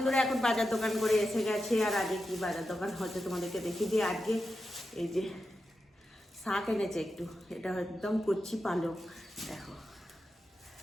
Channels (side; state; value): both; normal; correlation 0.89